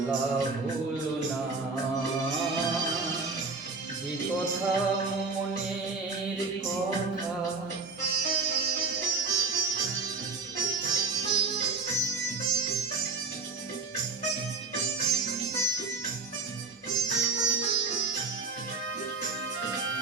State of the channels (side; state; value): left; quieter; 4.2 dB